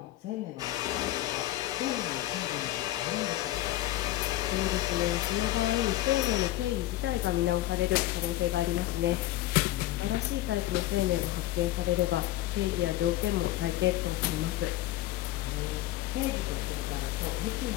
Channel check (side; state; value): right; quieter; 15.4 dB